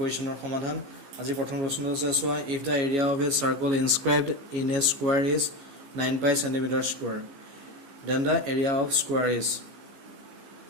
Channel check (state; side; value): late; left; 15 ms